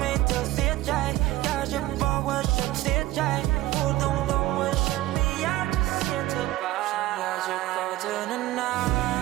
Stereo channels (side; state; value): left; quieter; 16.5 dB